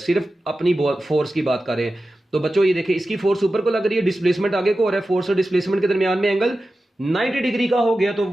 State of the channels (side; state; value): both; normal; correlation 0.94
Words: अपनी फोर्स की बात कर रहे हैं। तो बच्चों ये देखिए, इसकी फोर्स ऊपर को लग रही है, डिस्प्लेसमेंट आगे को हो रहा है, फोर्स और डिस्प्लेसमेंट के दरमियान में एंगल 90 डिग्री का हो गया, तो